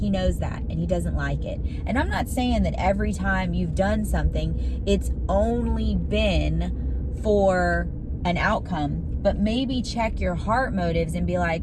knows that, and He doesn't like it. And I'm not saying that every time you've done something, it's only been for an outcome, but maybe check your heart motives and be like,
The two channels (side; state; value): both; identical; correlation 1.00